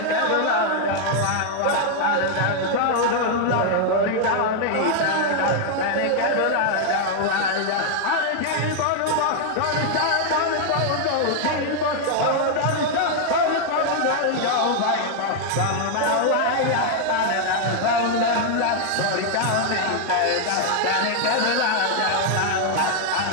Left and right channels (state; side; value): different; both; correlation 0.00